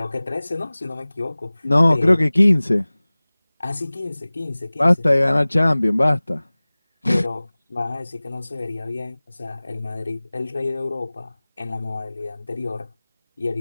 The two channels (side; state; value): both; inverted; correlation -0.99